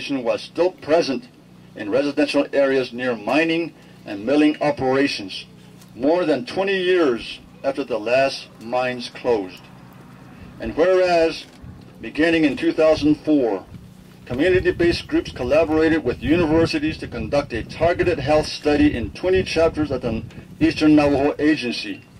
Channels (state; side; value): identical; both; correlation 1.00